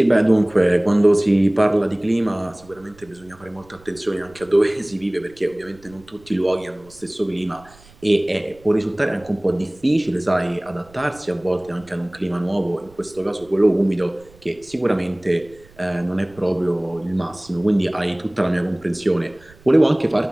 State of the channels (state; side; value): noise; right; rumble, 26 dB below the sound